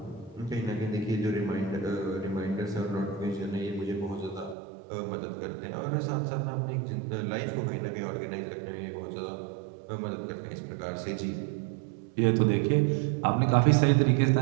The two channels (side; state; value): left; drops out; at 4.5 s